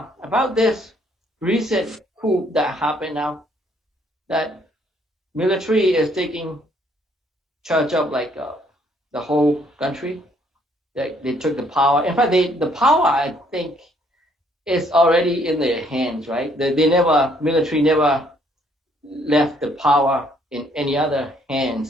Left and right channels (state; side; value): normal; both; correlation 0.66